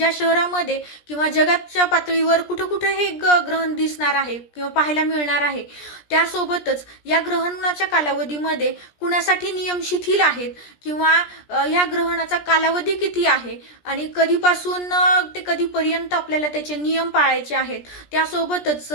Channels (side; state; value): right; late; 17 ms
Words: शहरामध्ये किंवा जगाच्या पातळीवर कुठं कुठं हे ग्रहण दिसणार आहे किंवा पाहायला मिळणार आहे. त्यासोबतच या ग्रहणाच्या कालावधीमध्ये कुणासाठी नियम शिथिल आहेत किंवा या ग्रहणाचा कालावधी किती आहे आणि कधीपासून ते कधीपर्यंत आपल्याला त्याचे नियम पाळायचे आहेत. त्यासोबतच